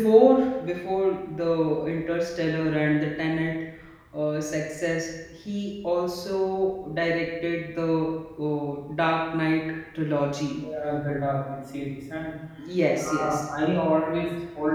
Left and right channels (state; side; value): identical; both; correlation 1.00